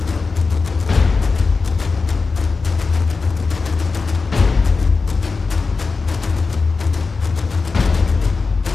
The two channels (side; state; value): right; quieter; 4.4 dB